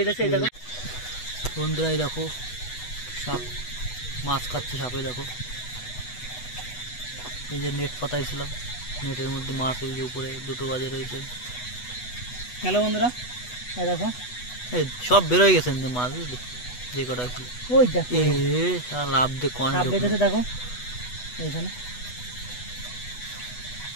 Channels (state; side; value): late; right; 8.1 ms